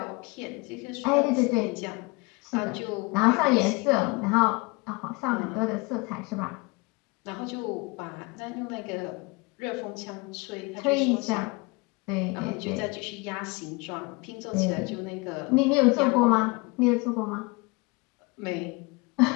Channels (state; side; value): quieter; right; 26.8 dB